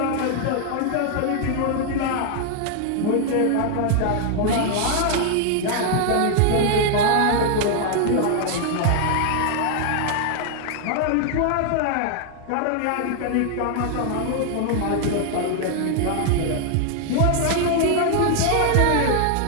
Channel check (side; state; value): both; different; correlation 0.00